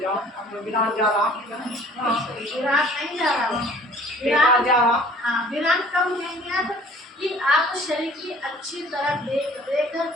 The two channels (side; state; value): both; normal; correlation 0.52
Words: हम विराट जा रहा, विराट नहीं जा रहा, विराट जा रहा। हाँ, विराट कब लेंगे आप कि आप शरीर की अच्छी तरह देख रेख